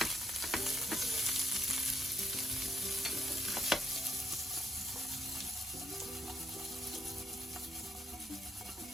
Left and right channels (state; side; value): normal; both; correlation 0.72